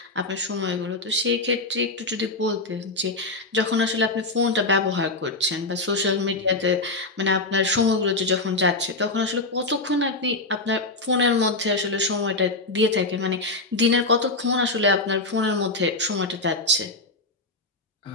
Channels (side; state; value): right; quieter; 3.1 dB